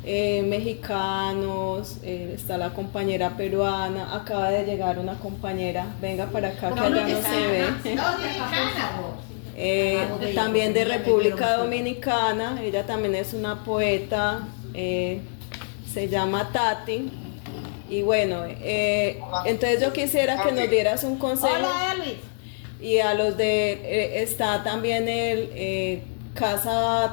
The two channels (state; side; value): silent; right; digital silence